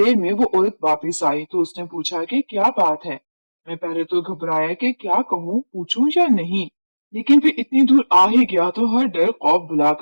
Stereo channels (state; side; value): inverted; both; correlation -1.00